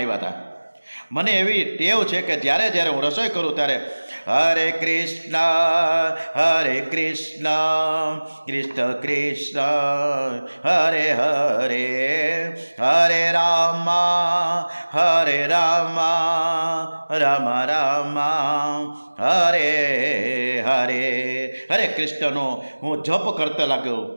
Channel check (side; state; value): both; inverted; correlation -1.00